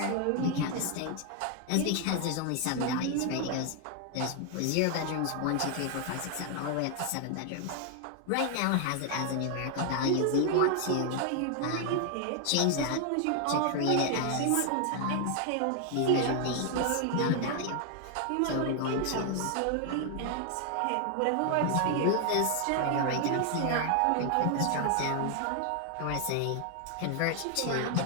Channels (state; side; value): different; both; correlation 0.00